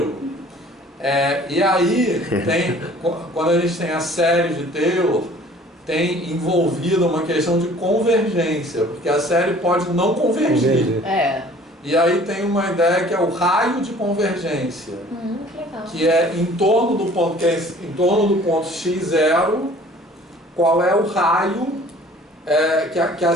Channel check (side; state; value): both; normal; correlation 0.51